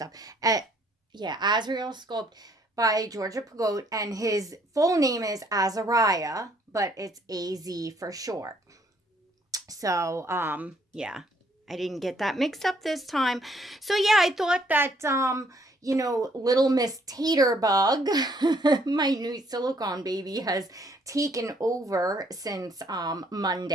Yeah, Azrael sculpt by Georgia Pagote, and his full name is Azrael, but it's AZ for short. So, yeah, I didn't get that mixed up this time. So, yeah, I thought that, little Miss Taterbug, my new silicone baby, has taken over since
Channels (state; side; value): normal; both; correlation 0.66